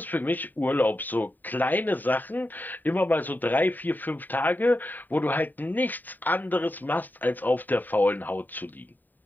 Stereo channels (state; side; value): late; right; 0.089 ms